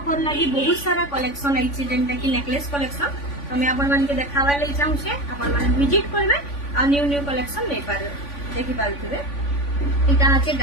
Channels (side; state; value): right; late; 3.5 ms